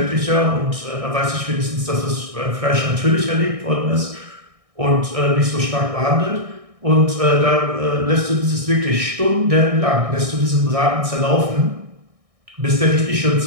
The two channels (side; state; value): left; late; 1.6 ms